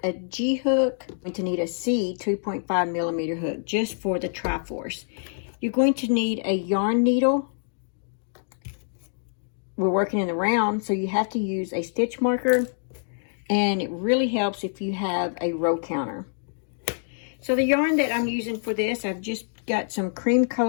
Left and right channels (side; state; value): right; silent; digital silence